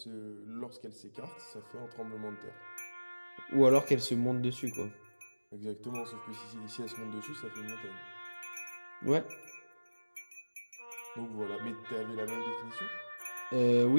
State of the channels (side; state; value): both; inverted; correlation -1.00